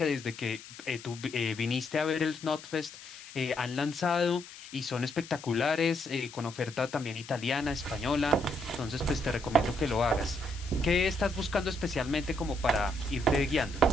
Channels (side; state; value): left; noise; hiss, 16 dB below the sound